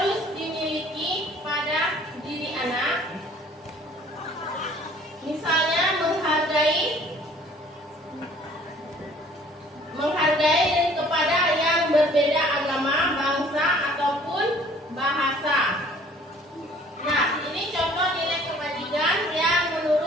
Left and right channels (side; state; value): both; normal; correlation 0.54